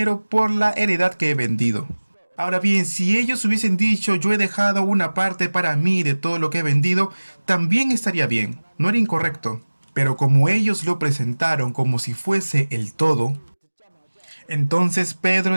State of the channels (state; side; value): inverted; both; correlation -1.00